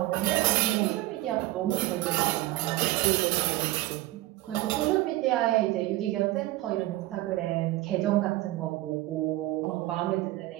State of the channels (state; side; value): quieter; left; 17.4 dB